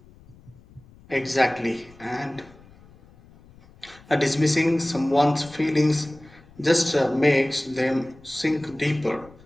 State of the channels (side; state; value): left; noise; rumble, 25 dB below the sound